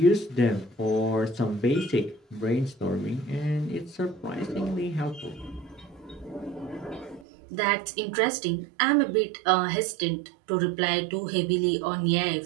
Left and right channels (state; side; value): drops out; left; at 7.2 s